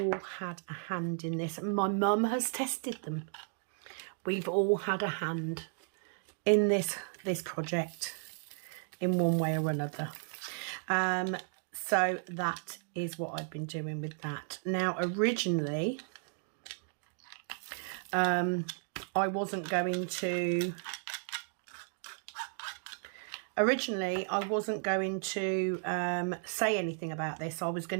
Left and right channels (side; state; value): left; silent; 55 dB below the other